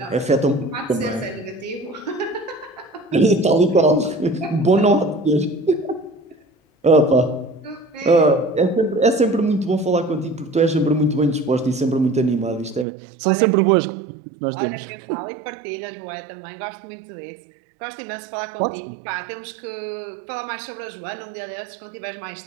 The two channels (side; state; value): left; drops out; at 12.9 s